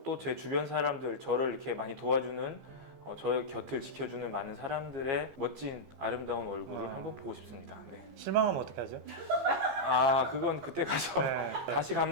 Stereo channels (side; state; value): left; late; 15 ms